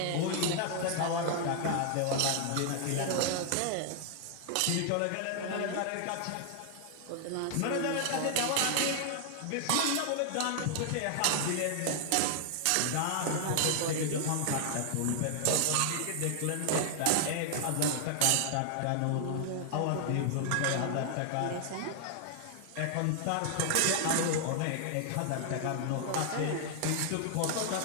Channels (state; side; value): different; both; correlation 0.00